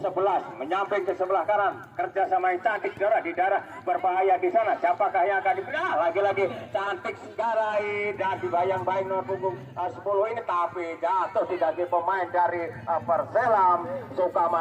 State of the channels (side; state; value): both; identical; correlation 1.00